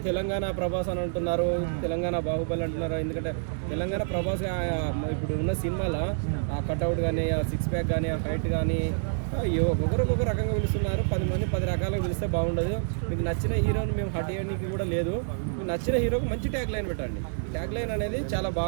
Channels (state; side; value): silent; left; digital silence